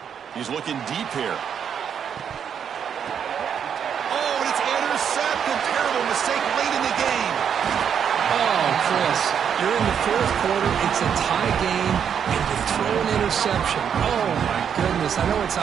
He's looking deep here. Oh, and it's intercepted. Terrible mistake late in the game. Oh, Chris, you're in the 4th quarter. It's a tie game, and you throw an interception. Oh, my goodness. I know it's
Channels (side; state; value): left; quieter; 7.9 dB